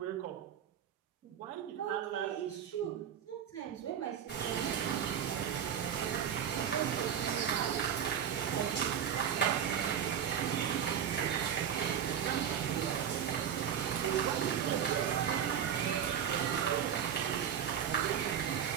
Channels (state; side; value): quieter; left; 8.8 dB